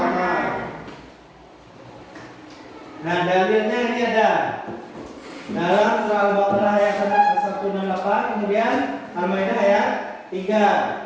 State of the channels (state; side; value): identical; both; correlation 1.00